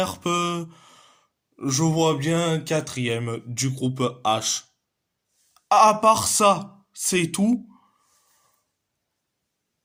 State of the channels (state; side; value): identical; both; correlation 1.00